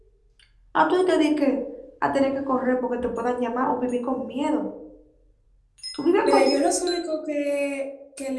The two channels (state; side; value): identical; both; correlation 1.00